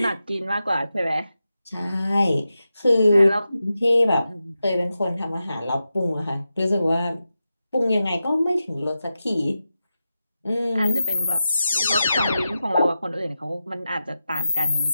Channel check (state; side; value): inverted; both; correlation -0.91